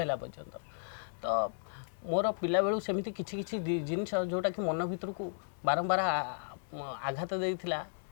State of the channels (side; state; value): right; silent; 55 dB below the other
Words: ହେଲା ପର୍ଯ୍ୟନ୍ତ। ତ ମୋର ପିଲାବେଳୁ ସେମିତି କିଛି କିଛି ଜିନିଷ ଯେଉଁଟାକି ମନ ଭିତରକୁ ବାରମ୍ବାର ଆଘାତ ଦେଇଥିଲା,